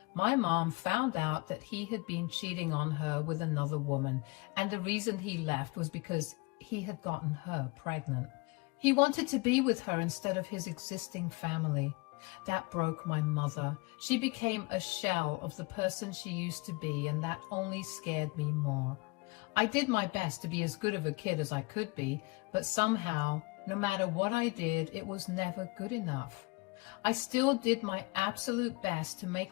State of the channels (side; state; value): right; quieter; 26.2 dB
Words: my mom found out that he had been cheating on her with another woman, and the reason he left was because he had gotten her pregnant. He wanted to be with her instead of his existing family. That broke my mother. She became a shell of the person she used to be, and that only scared me more. I did my best to be as good of a kid as I could be, but somehow, no matter what I did, it was never good enough. I still did my absolute best to